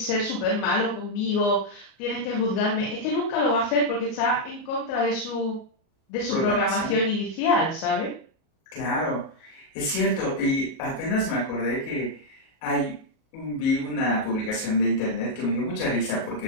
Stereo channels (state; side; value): late; right; 37 ms